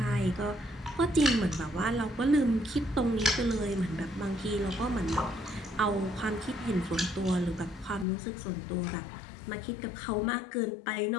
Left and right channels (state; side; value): drops out; right; at 8.1 s